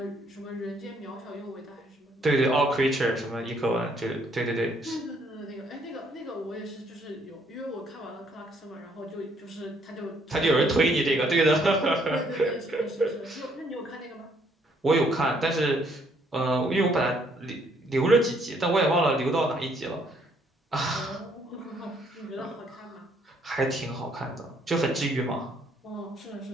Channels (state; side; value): normal; both; correlation 0.67